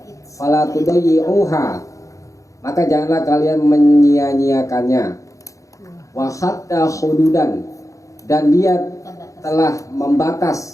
Fala tudayyi'uha, maka janganlah kalian menyia-nyiakannya. Wa hatta hududan, dan dia telah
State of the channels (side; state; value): right; late; 0.16 ms